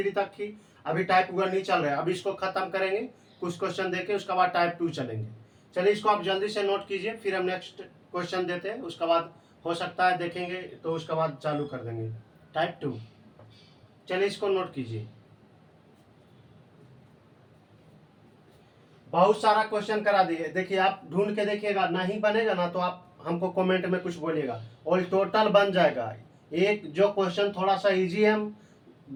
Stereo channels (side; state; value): both; identical; correlation 1.00